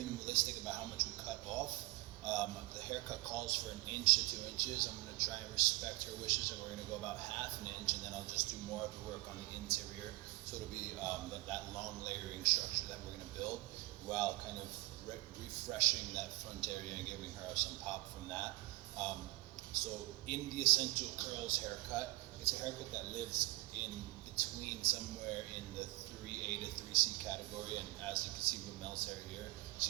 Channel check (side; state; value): left; quieter; 22.3 dB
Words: about how much we cut off. The haircut calls for 1 to 2 inches. I'm going to try and respect her wishes, and we're going to go about half an inch, and then I'll just do more of the work on the interior. So it'll be that long layering structure that we're going to build while kind of refreshing that front area and giving her some pop from that. So in the Essential Curls haircut, it's a haircut that lives in between somewhere in the 3A to 3C category, and as you can see with Mel's hair here,